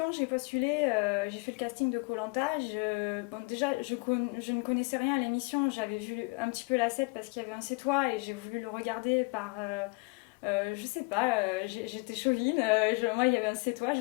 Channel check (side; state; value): right; quieter; 28.6 dB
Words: j'ai postulé, j'ai fait le casting de koh bon, déjà, je ne connaissais rien à l'émission. J'avais vu un petit peu la set parce qu'il y avait un C'est toi et j'ai voulu le regarder par... je sais pas, j'étais chauvine. Moi, il y avait un C'est toi, je